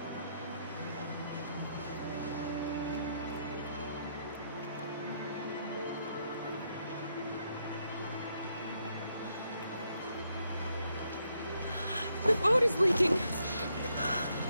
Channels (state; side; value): inverted; both; correlation -0.77